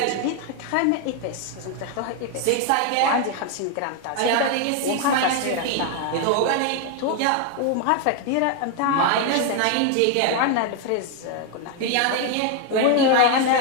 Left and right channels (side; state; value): both; different; correlation 0.01